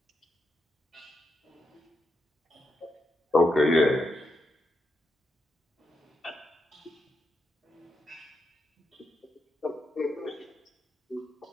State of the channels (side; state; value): both; normal; correlation 0.83